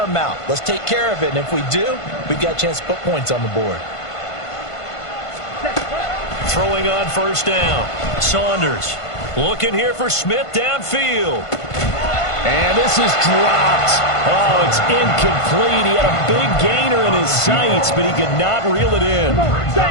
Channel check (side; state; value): right; late; 1.5 ms